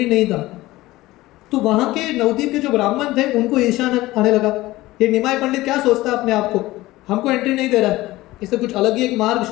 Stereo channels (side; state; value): right; quieter; 18.1 dB